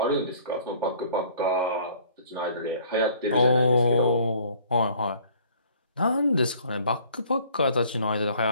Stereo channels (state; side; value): inverted; both; correlation -0.55